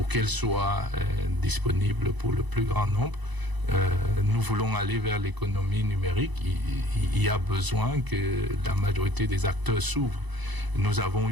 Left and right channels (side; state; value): left; late; 1.0 ms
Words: qu'elle soit disponible pour le plus grand nombre. Nous voulons aller vers l'économie numérique. Il y a besoin que la majorité des acteurs s'ouvrent. Nous avons